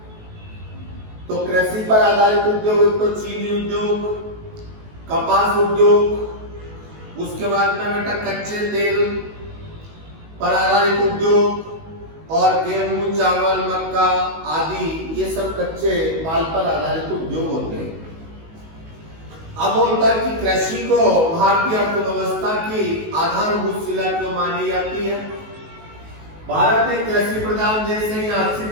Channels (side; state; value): left; late; 19 ms